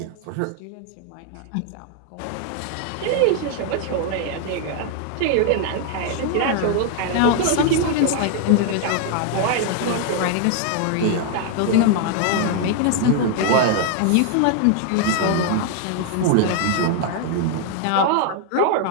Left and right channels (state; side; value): different; both; correlation 0.00